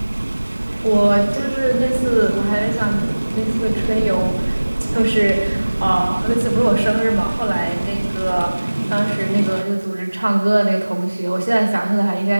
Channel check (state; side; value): inverted; both; correlation -1.00